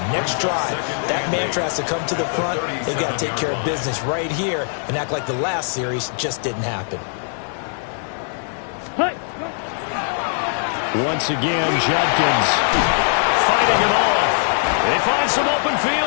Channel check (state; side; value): silent; right; digital silence